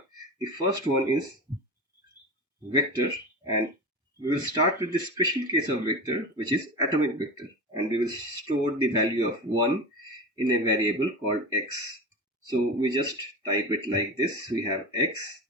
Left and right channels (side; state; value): both; normal; correlation 0.27